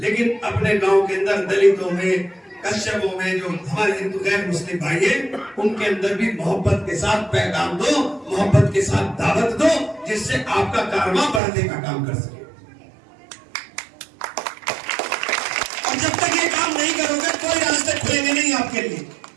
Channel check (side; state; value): left; drops out; at 11.4 s